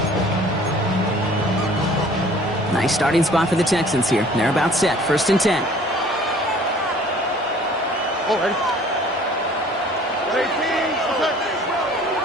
Nice starting spot for the Texans here. They're about set. 1st and 10. Oh, ready.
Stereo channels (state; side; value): normal; both; correlation 0.51